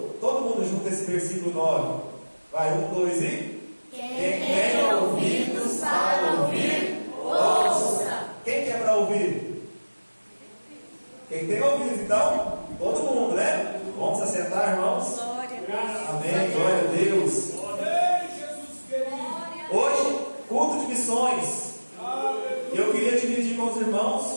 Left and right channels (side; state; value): both; inverted; correlation -1.00